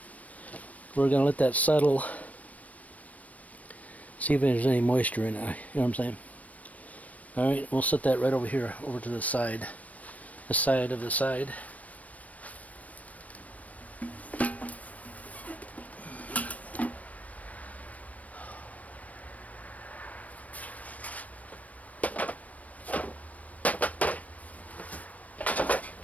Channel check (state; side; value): late; right; 0.069 ms